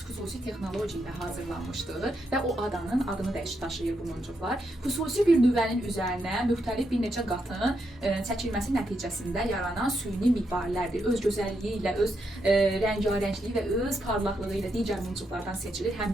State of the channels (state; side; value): normal; both; correlation 0.81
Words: texnologiya ilə hazırlanmışdır və o adanın adını daşıyır bu muncuqlar. Xüsusi bir nüvənin üzərinə müxtəlif bir neçə qatın çəkilməsi nəticəsində yaranan süni mirvarilərdir. Öz gözəlliyi ilə, öz rəngarəngliyi və öz parlaqlığı ilə digər muncuqlardan seçilir.